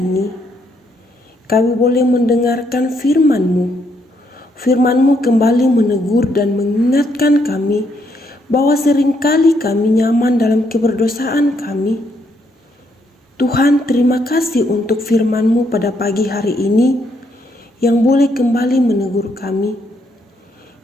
Kami boleh mendengarkan firman-Mu. Firman-Mu kembali menegur dan mengingatkan kami bahwa seringkali kami nyaman dalam keberdosaan kami. Tuhan, terima kasih untuk firman-Mu pada pagi hari ini yang boleh kembali menegur kami.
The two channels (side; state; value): both; normal; correlation 0.74